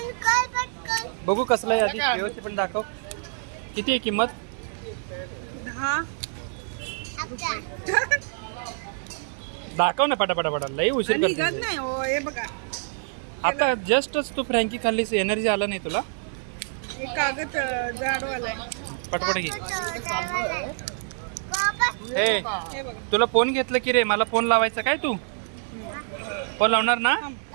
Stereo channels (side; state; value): left; silent; digital silence